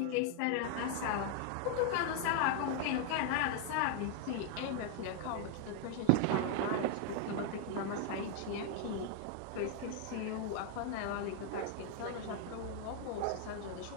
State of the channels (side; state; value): both; different; correlation 0.00